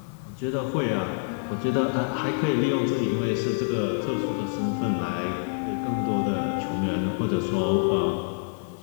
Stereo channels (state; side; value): silent; right; 61 dB below the other